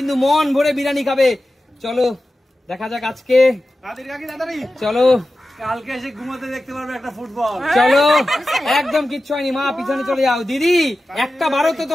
মন ভরে বিরিয়ানি খাবে। চলো দেখা যাক আজকে। চলো কালকে এসে ঘুমাতে দেখতে পারবে একটা ফুটবল। চলো একদম কিচ্ছু হয়নি মা, পিছনে চলে যাও। দিদি একটা বারও তো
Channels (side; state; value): both; normal; correlation 0.94